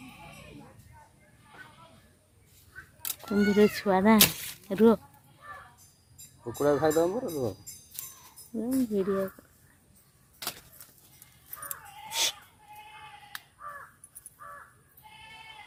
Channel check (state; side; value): identical; both; correlation 1.00